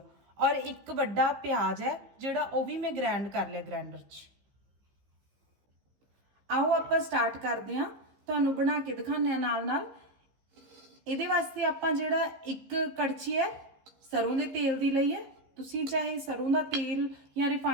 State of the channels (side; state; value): left; late; 15 ms